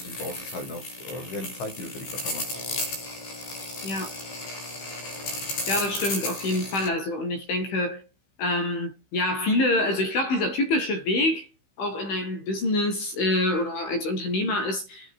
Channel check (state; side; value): late; right; 15 ms